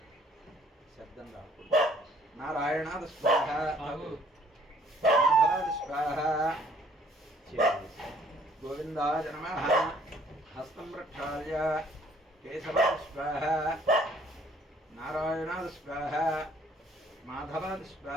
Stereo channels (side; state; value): both; normal; correlation 0.59